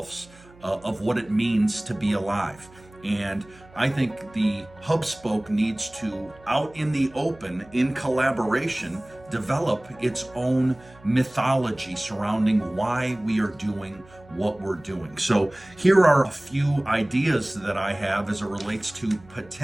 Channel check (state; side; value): noise; right; hum, 25 dB below the sound